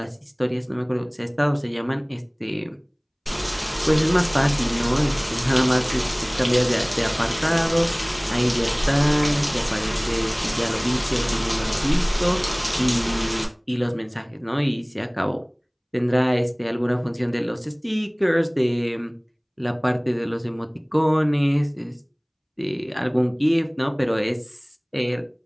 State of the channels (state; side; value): identical; both; correlation 1.00